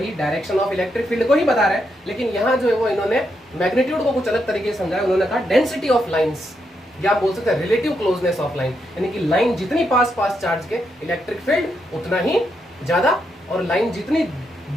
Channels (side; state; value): both; normal; correlation 0.81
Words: डायरेक्शन ऑफ इलेक्ट्रिक फील्ड को ही बता रहा है, लेकिन यहाँ जो है वो इन्होंने मैग्नीट्यूड को कुछ अलग तरीके से समझाया। उन्होंने कहा डेंसिटी ऑफ लाइंस, या आप बोल सकते हैं रिलेटिव क्लोजनेस ऑफ लाइन, यानी कि लाइन जितनी पास चार्ज के इलेक्ट्रिक फील्ड उतना ही ज्यादा, और लाइन जितनी